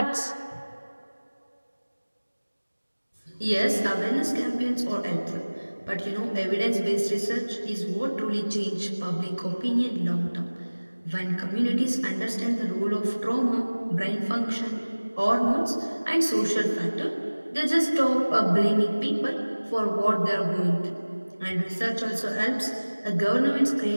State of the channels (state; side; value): inverted; both; correlation -1.00